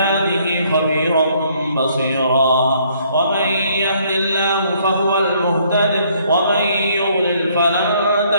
خبيرا بصيرا. ومن يهد الله فهو المهتد ومن يضلل فلن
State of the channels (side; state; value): both; inverted; correlation -0.65